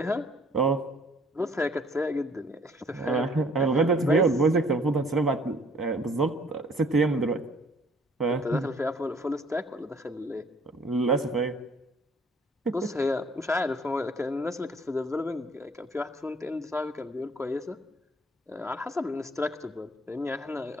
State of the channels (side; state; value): both; normal; correlation 0.58